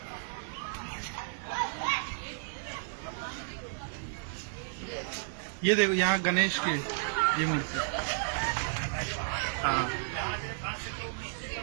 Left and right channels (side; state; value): left; silent; 56 dB below the other